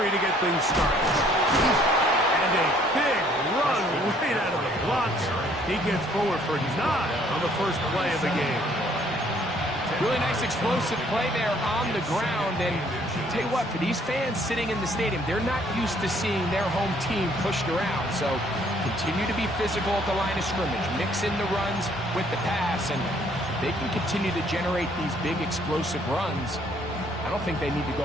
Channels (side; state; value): both; normal; correlation 0.62